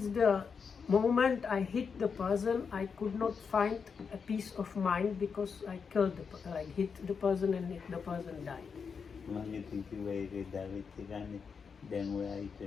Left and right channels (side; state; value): right; quieter; 5.9 dB